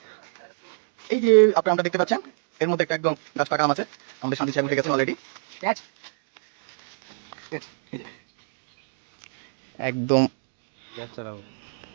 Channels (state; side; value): silent; left; digital silence